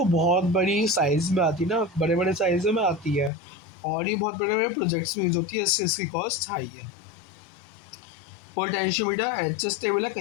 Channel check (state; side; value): drops out; right; at 3.3 s